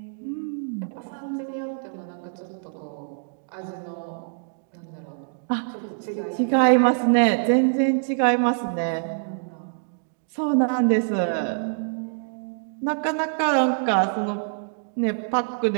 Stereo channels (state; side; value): silent; left; digital silence